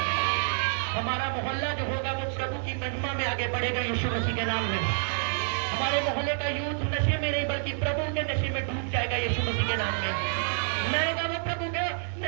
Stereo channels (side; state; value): left; silent; 59 dB below the other